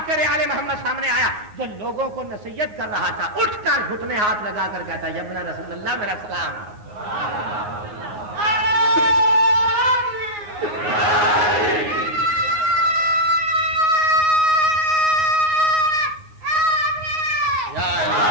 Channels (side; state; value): left; late; 9.5 ms